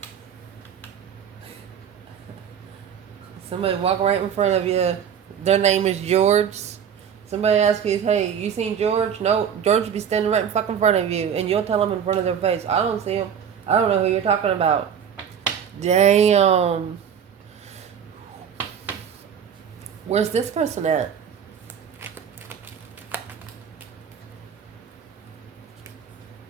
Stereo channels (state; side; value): quieter; left; 8.1 dB